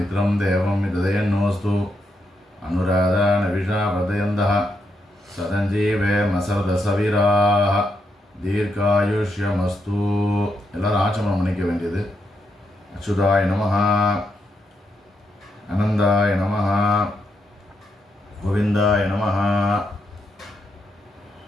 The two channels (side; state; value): both; normal; correlation 0.81